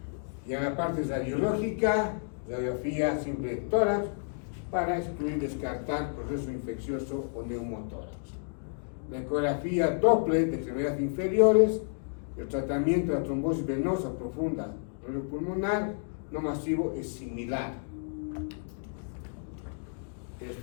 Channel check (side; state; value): right; silent; digital silence